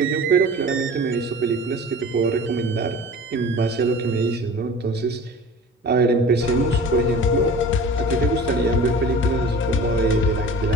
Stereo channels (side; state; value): both; normal; correlation 0.40